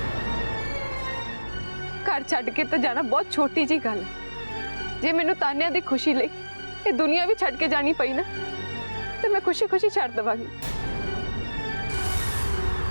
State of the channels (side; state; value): both; inverted; correlation -1.00